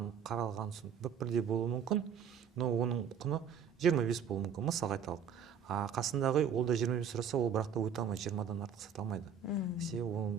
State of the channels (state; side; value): quieter; left; 7.3 dB